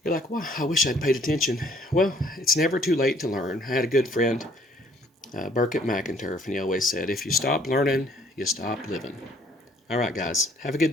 you're like, wow, I wish I'd paid attention. Well, it's never too late to learn. I had a good friend, Burkett McInturf, and he always said, if you stop learning, you stop living. All right, guys, have a good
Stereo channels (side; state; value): both; normal; correlation 0.62